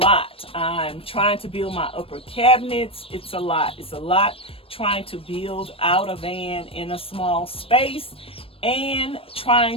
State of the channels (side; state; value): right; late; 0.27 ms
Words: I'm trying to build my upper cabinets. It's a lot trying to build out a van in a small space and